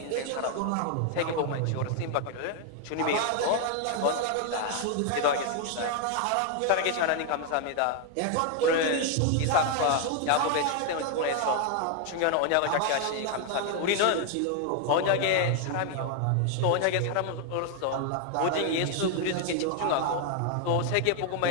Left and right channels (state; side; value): different; both; correlation 0.00